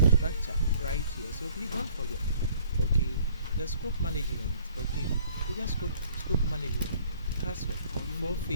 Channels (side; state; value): both; inverted; correlation -0.58